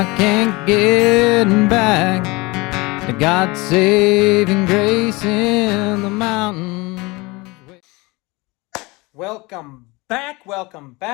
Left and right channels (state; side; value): quieter; right; 24.2 dB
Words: can't get back to God's saving grace in the mountains. Welcome back